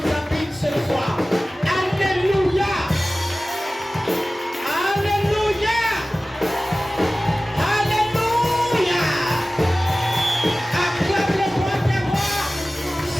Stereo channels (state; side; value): normal; both; correlation 0.97